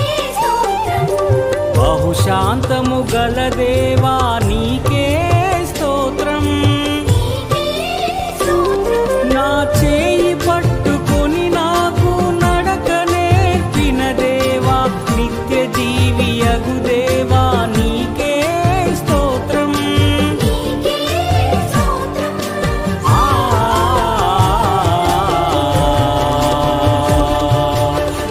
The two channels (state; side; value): identical; both; correlation 1.00